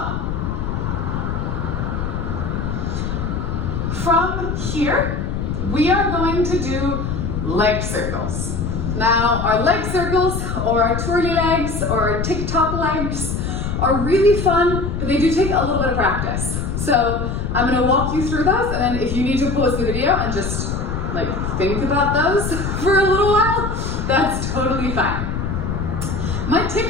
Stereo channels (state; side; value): noise; left; rumble, 2 dB below the sound